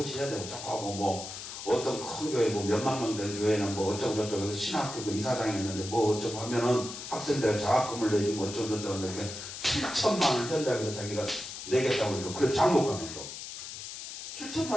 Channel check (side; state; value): left; noise; hiss, 9 dB below the sound